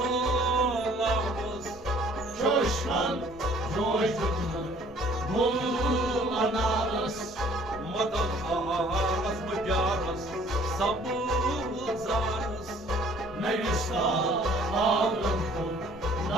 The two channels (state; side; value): normal; both; correlation 0.56